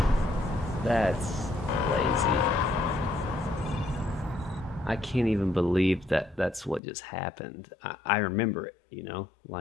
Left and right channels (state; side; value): drops out; right; at 6.8 s